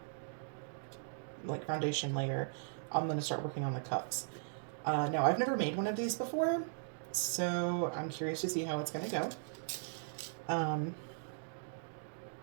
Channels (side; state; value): left; silent; digital silence